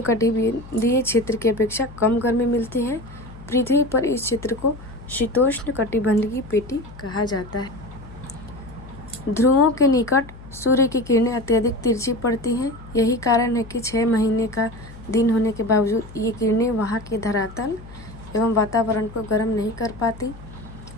क्षेत्र की अपेक्षा कम गर्मी मिलती है। पृथ्वी पर इस क्षेत्र को शीतोष्ण कटिबंधीय पेटी कहा जाता है। ध्रुवों के निकट सूर्य की किरणें अत्यधिक तिरछी पड़ती हैं। यही कारण है कि 6 महीने का दिन होने के बावजूद ये किरणें वहाँ के धरातल एवं वातावरण को गर्म नहीं कर पाती,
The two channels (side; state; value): left; noise; hum, 17 dB below the sound